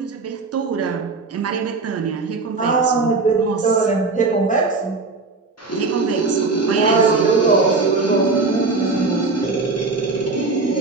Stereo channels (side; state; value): left; quieter; 3.8 dB